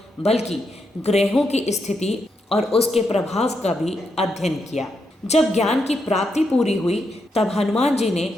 बल्कि ग्रहों की स्थिति और उसके प्रभाव का भी अध्ययन किया। जब ज्ञान की प्राप्ति पूरी हुई तब हनुमान जी ने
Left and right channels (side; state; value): both; normal; correlation 0.82